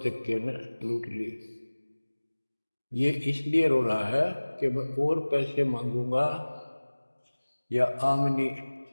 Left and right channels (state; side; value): inverted; both; correlation -1.00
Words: ने लूट लिए। ये इसलिए रो रहा है कि मैं और पैसे मांगूंगा या आमनी